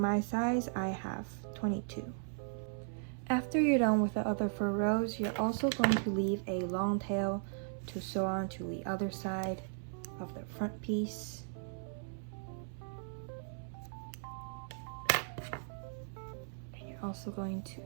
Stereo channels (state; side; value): silent; left; 53 dB below the other